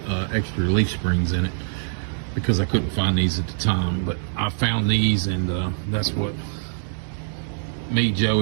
extra leaf springs in it because I couldn't find these at the time. But I found these, and that's what me,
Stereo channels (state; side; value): silent; left; digital silence